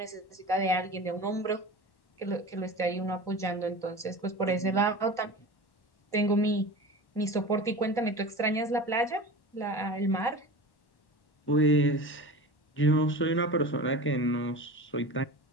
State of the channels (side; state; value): right; late; 1.1 ms